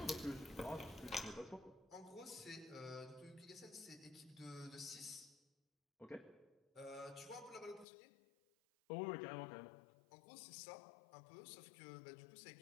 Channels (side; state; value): right; drops out; at 7.9 s